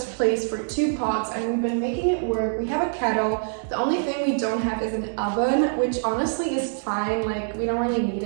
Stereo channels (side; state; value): left; silent; digital silence